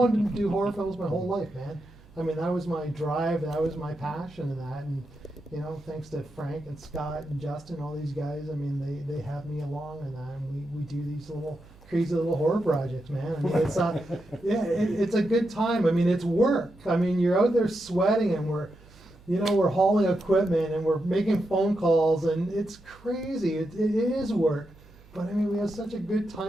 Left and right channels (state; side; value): noise; right; hum, 24 dB below the sound